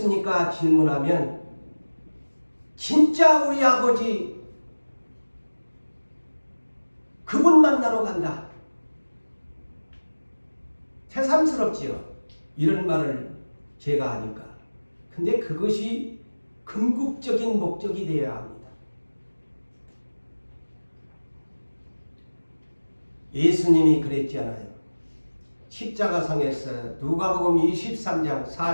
질문하면 진짜 우리 아버지 그분 만나러 간다. 새삼스럽지요. 이런 말을 제가 하니까. 근데 그것이 궁극적인 목적이 되어야 합니다. 예수님이 그랬잖아요. 십자가상에서 누가복음 23장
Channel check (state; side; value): inverted; both; correlation -1.00